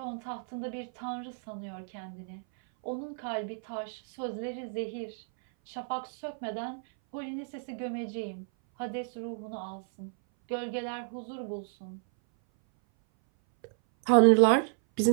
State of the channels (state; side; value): silent; left; 57 dB below the other